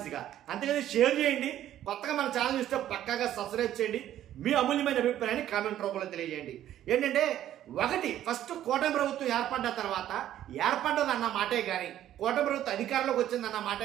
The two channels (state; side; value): quieter; left; 12.1 dB